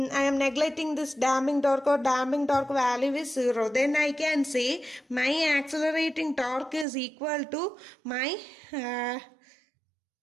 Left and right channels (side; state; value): left; drops out; at 6.9 s